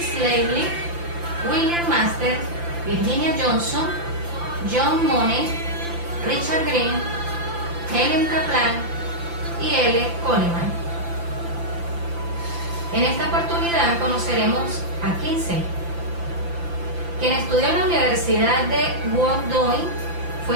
Lavely, William Master, Virginia Johnson, John Money, Richard Green, Helen Kaplan y L. Coleman. En esta oportunidad conoceremos a Kinsey, quien estudió en la Universidad de Washington,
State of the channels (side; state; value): left; late; 5.9 ms